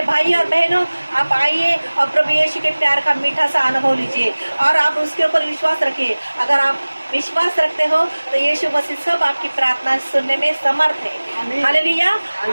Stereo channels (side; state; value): both; inverted; correlation -1.00